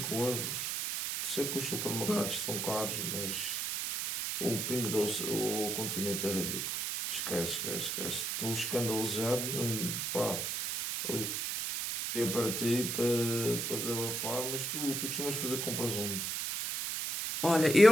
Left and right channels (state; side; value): noise; right; hiss, 1 dB below the sound